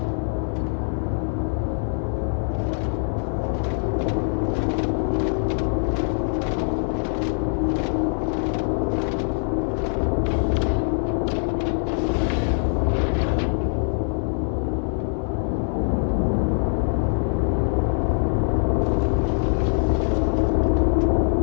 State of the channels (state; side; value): silent; right; 58 dB below the other